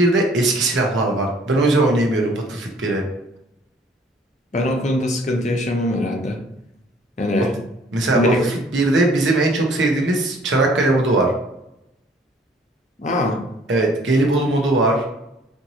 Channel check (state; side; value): normal; both; correlation 0.57